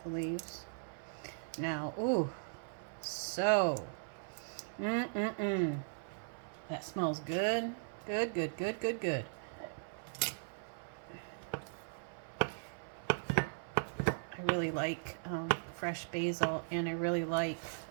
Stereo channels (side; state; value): left; silent; 52 dB below the other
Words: the leaves. Now, ooh, so, that smells good. Good, good, good, good, good. I really like fresh basil, and I really like